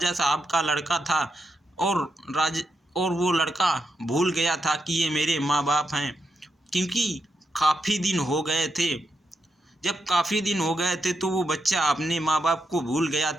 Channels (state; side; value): normal; both; correlation 0.84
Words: साहब का लड़का था और वो लड़का भूल गया था कि ये मेरे माँ बाप हैं, क्योंकि काफ़ी दिन हो गए थे। जब काफ़ी दिन हो गए थे तो वो बच्चा अपने माँ बाप को भूल गया